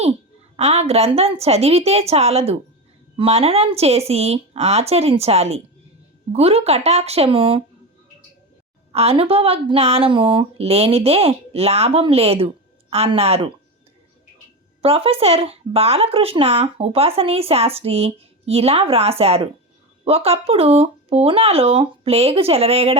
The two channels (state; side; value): normal; both; correlation 0.20